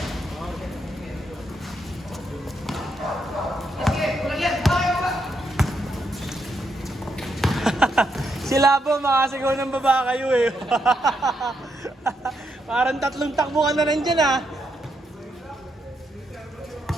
Sila po, makasigaw ng baba kayo eh. Parang 3 takbo ka na nandyan ah.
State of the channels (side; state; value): both; normal; correlation 0.79